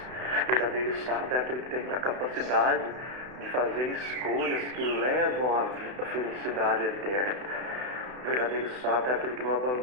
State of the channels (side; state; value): left; late; 32 ms